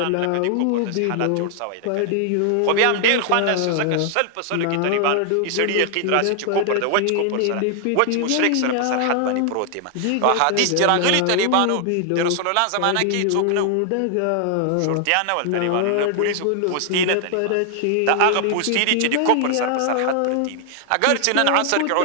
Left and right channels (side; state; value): both; different; correlation 0.00